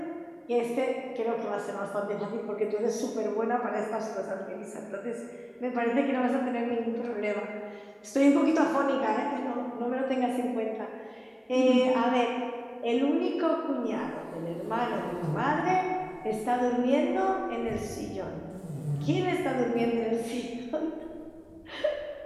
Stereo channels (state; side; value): identical; both; correlation 1.00